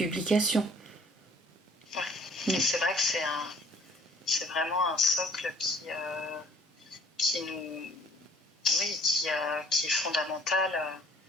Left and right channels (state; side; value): normal; both; correlation 0.56